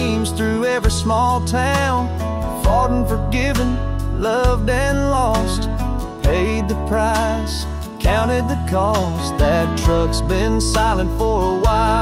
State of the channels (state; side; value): identical; both; correlation 1.00